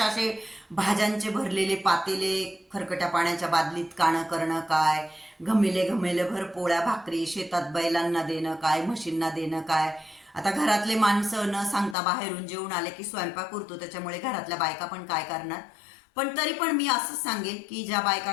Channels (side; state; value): right; drops out; at 12.0 s